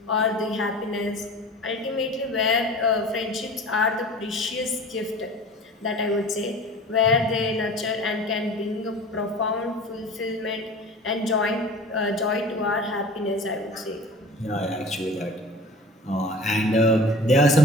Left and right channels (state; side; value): normal; both; correlation 0.40